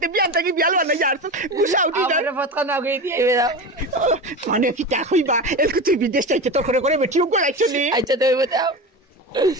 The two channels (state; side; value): normal; both; correlation 0.25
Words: বিয়ান থাকি বিয়াল বানাই যার তো গুছা উঠি না আমার ফতকা না গই দিয়ে দাও মানে কিটা কইবা এলকু তুই বিদেশ যাইতে তোর করে করে বেটিও গলাইছ নি আচ্ছা তো বতাও